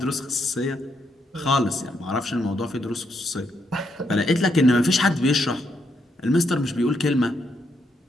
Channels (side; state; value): both; normal; correlation 0.78